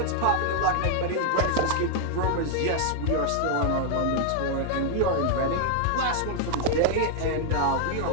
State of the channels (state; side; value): different; both; correlation 0.00